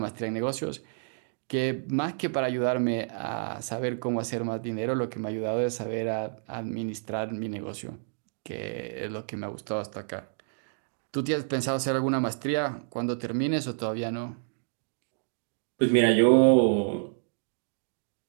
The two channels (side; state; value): left; silent; digital silence